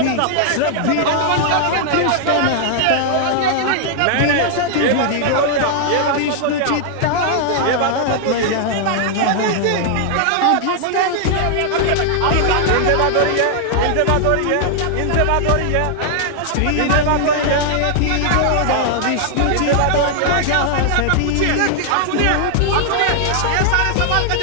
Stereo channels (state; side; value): different; both; correlation -0.01